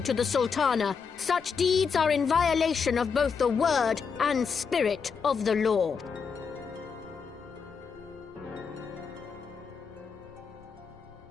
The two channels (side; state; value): right; quieter; 5.9 dB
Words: to the Sultana, such deeds are in violation of both the word and spirit of the law.